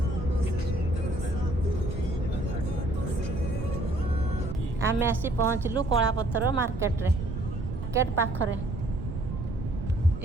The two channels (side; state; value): right; noise; rumble, 5 dB below the sound